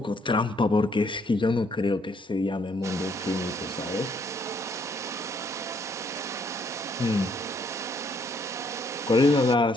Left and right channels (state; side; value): normal; both; correlation 0.68